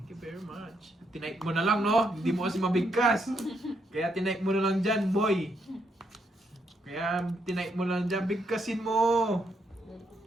you very much. Tinipe mo na lang, no? Hindi mo kasi mabigkas. Kaya tinipe mo na lang dyan, boy. Kaya tinipe mo lang dyan, bigkasin mo.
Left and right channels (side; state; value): both; normal; correlation 0.77